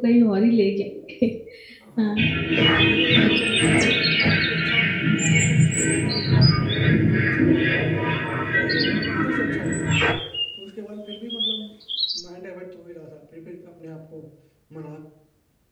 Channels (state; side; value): identical; both; correlation 1.00